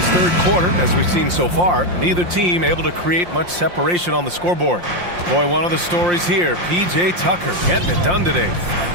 third quarter, as we've seen so far, neither team able to create much separation on the scoreboard. Boy, one of the stories here, P.J. Tucker getting it done today.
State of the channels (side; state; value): left; late; 5.7 ms